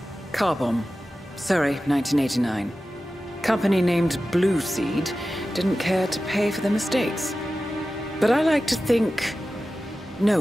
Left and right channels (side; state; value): both; normal; correlation 0.94